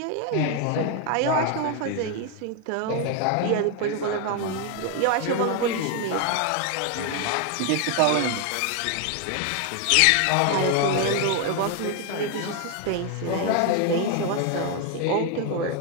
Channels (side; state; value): both; different; correlation 0.01